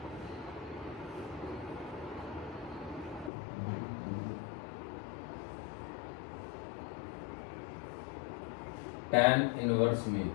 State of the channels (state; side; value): drops out; right; at 3.3 s